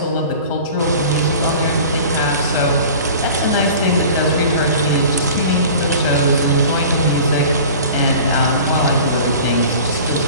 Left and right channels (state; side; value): inverted; both; correlation -0.41